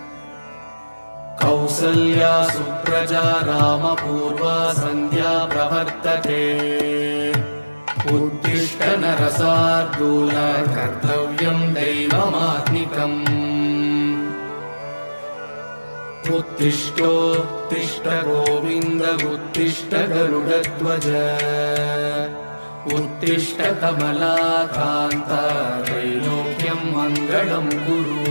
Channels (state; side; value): inverted; both; correlation -1.00